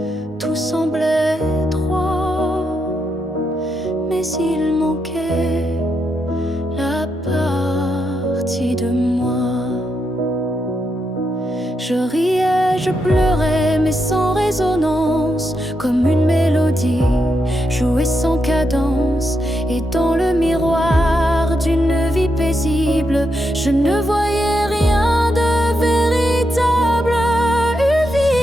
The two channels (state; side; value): normal; both; correlation 0.83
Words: tout semblait droit, mais il manquait la partie de moi. Je riais, je pleurais, mais sans résonance, comme une mélodie jouée sans cadence. Et dans le miroir d'une vie paisible, je ne voyais rien de véritable. Une